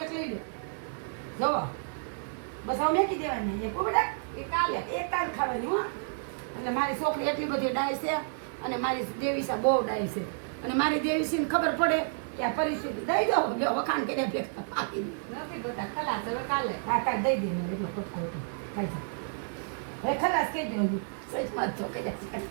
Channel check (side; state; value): left; silent; digital silence